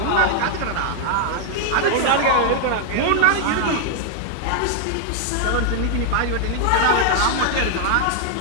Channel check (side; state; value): both; different; correlation 0.00